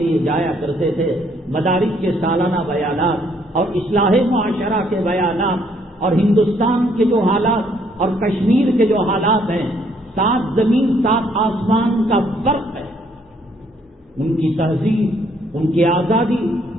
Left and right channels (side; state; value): both; normal; correlation 0.67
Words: جایا کرتے تھے، مدارس کے سالانہ بیانات اور اصلاح معاشرہ کے بیانات، اور ہندوستان کے جو حالات اور کشمیر کے جو حالات ہیں، 7 زمین 7 آسمان کا فرق ہے۔ ان کی تہذیب، ان کی آزادی،